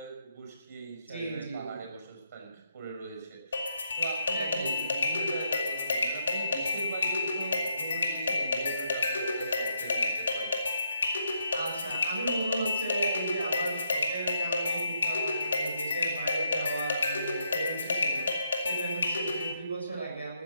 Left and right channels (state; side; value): inverted; both; correlation -0.78